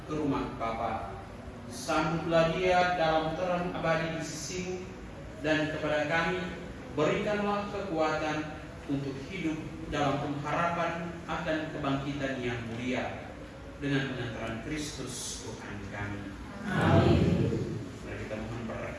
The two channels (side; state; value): both; identical; correlation 1.00